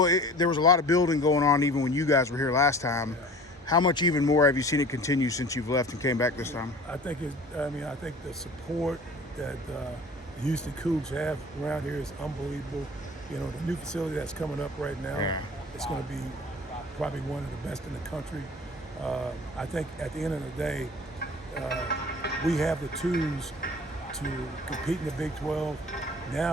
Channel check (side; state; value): both; normal; correlation 0.43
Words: there was a lot of building going on even when you guys were here last time. Yeah. How much even more have you seen it continue since you've left and came back this time? I think I think the support that the Houston Cougs have around here is unbelievable. You know, the new facility that's coming up right now, Yeah. it's going to be probably one of the best in the country. I think at the end of the day, we have the tools to compete in the Big 12.